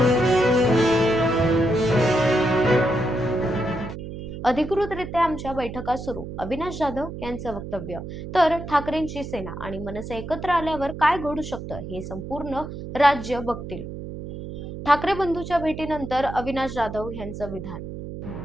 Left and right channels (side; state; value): right; noise; hum, 9 dB below the sound